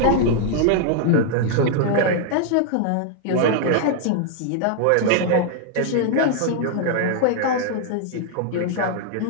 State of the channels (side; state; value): both; different; correlation 0.00